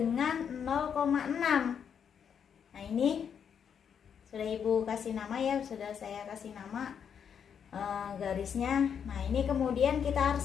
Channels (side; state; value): right; quieter; 7.6 dB